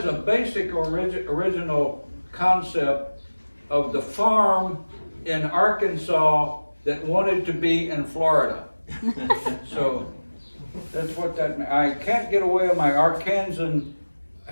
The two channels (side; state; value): both; inverted; correlation -1.00